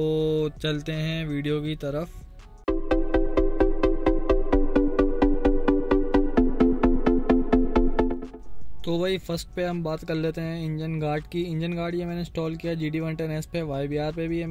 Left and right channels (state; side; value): identical; both; correlation 1.00